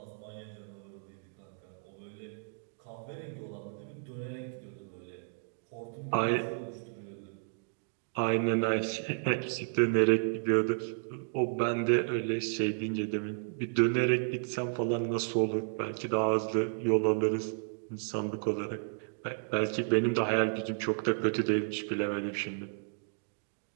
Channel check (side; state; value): left; silent; digital silence